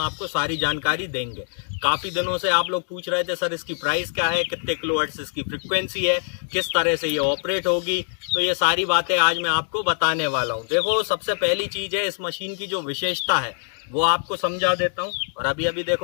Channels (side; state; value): right; silent; digital silence